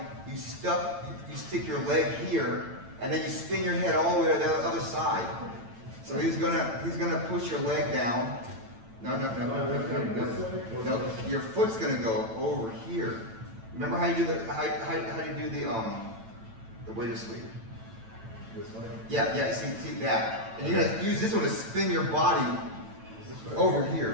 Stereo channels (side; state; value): left; late; 8.9 ms